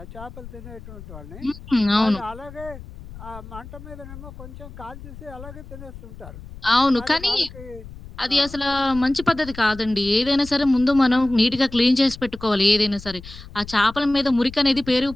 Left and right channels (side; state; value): left; noise; rumble, 15 dB below the sound